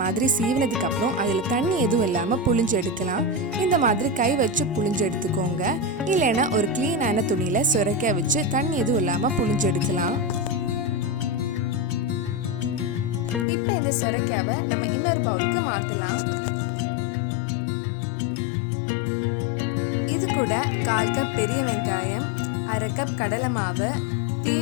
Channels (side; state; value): right; drops out; at 13.5 s